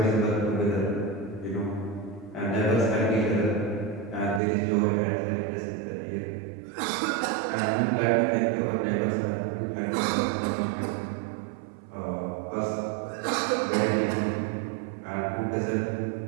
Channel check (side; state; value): left; drops out; at 4.4 s